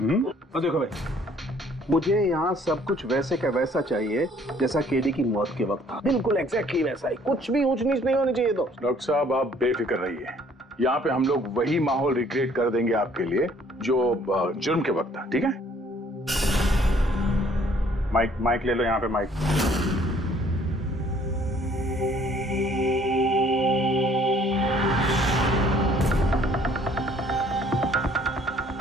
तो देखो भाई, मुझे यहाँ सब कुछ वैसे का वैसा चाहिए जैसा केडी की मौत के वक्त था, बिल्कुल एग्जैक्टली वैसा ही, कुछ भी ऊंच नीच नहीं होनी चाहिए। तो डॉक्टर साहब आप बेफिक्र रहिए, यहाँ पे हम लोग वही माहौल रिक्रिएट कर देंगे आपके लिए जो जुर्म के वक्त था, ठीक है? माइक ले लो, यहाँ पे माइक।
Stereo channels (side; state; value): both; normal; correlation 0.60